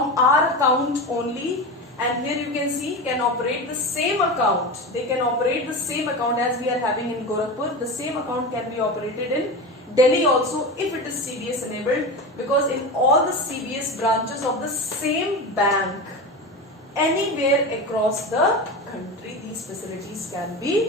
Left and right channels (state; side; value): normal; both; correlation 0.24